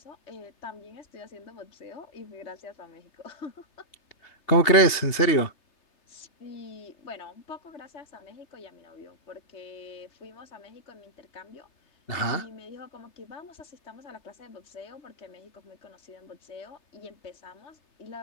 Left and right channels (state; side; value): late; right; 3.3 ms